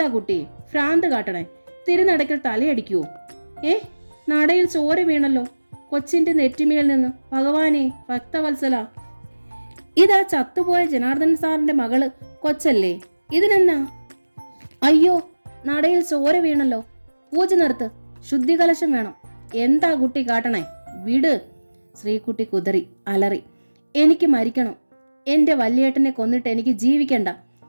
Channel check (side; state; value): both; inverted; correlation -1.00